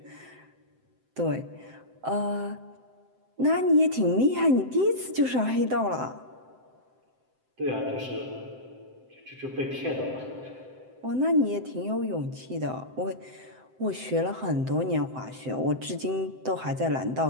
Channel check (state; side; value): late; left; 7.8 ms